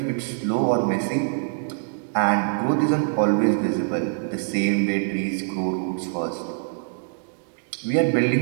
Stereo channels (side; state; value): left; silent; digital silence